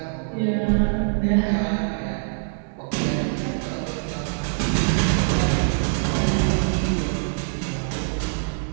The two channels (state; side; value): silent; left; 63 dB below the other